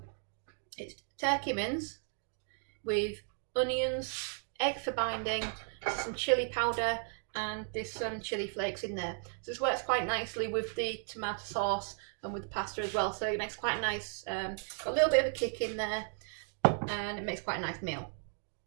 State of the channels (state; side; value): silent; left; 54 dB below the other